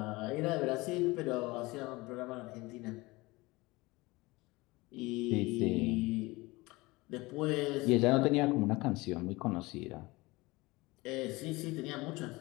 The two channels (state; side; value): quieter; right; 22.2 dB